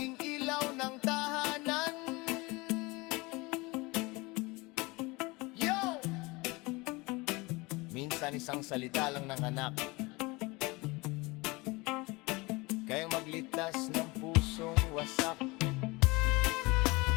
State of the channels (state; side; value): quieter; right; 24.3 dB